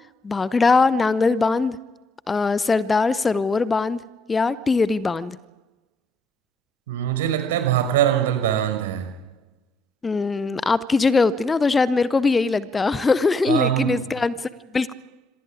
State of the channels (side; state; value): both; normal; correlation 0.70